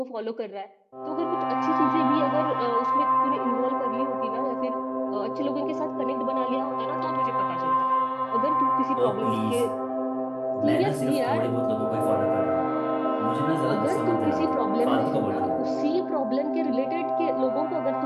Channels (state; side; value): identical; both; correlation 1.00